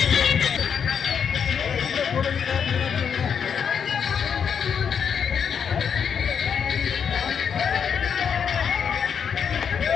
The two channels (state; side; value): quieter; right; 7.2 dB